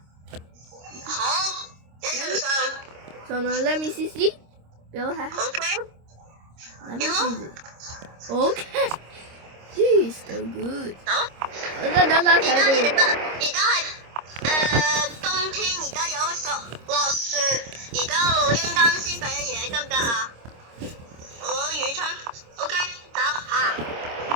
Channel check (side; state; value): left; late; 26 ms